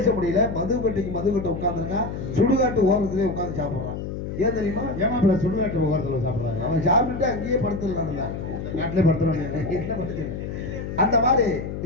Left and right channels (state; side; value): noise; left; hum, 6 dB below the sound